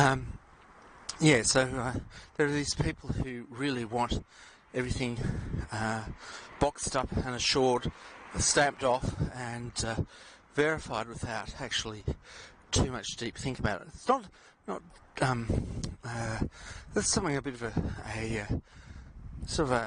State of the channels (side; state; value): both; identical; correlation 1.00